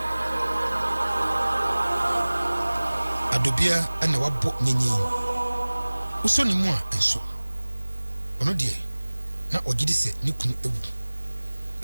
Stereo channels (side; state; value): both; inverted; correlation -1.00